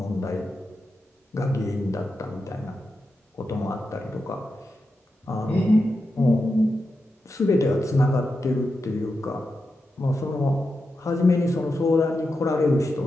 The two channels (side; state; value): both; normal; correlation 0.88